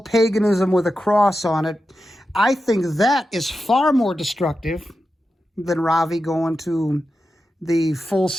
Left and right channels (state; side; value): normal; both; correlation 0.90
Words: with a cross on it. I think that is far more destructive than Ravi going to the